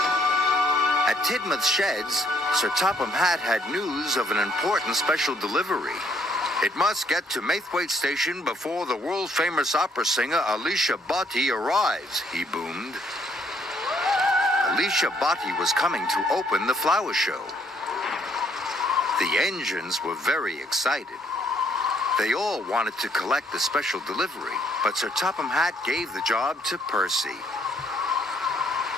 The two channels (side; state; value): both; normal; correlation 0.67